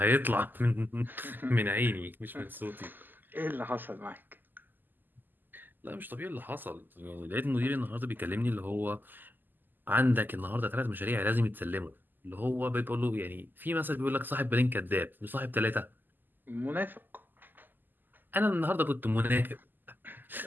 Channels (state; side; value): late; left; 0.089 ms